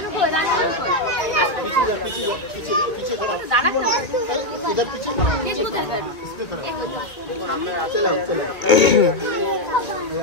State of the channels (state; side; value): late; right; 1.9 ms